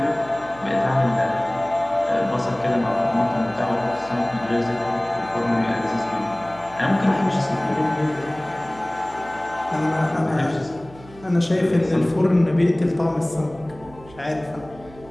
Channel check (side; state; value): right; noise; hum, 21 dB below the sound